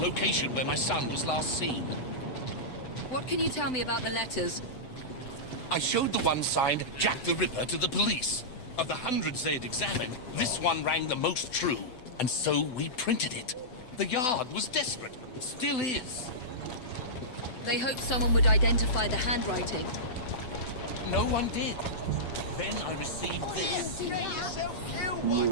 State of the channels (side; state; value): right; late; 7.9 ms